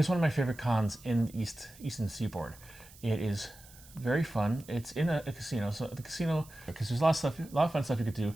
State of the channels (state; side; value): noise; right; hiss, 22 dB below the sound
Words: one of my favorite cons in the Eastern Seaboard. It is very fun. It's in a casino, so the casino, because there's a lot of fun stuff you could do,